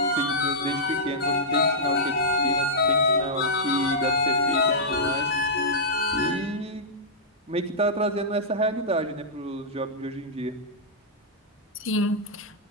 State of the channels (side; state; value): both; normal; correlation -0.11